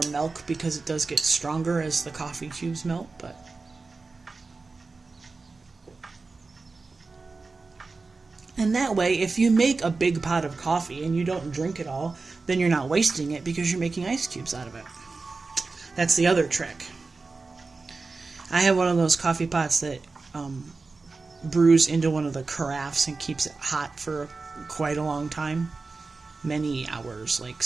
milk because it does get stronger as the coffee cubes melt, but and that way, if you make a big pot of coffee and you don't drink it all, then you're not wasting it because you're making ice cubes out of it. That's the other trick. I have one of those coffee pots that brews into one of the carafes and keeps it hot for quite a long time. Many hours, like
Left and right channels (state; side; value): quieter; left; 4.0 dB